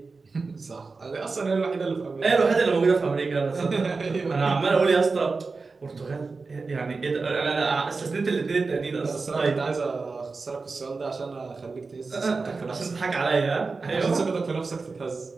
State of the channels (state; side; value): quieter; left; 4.2 dB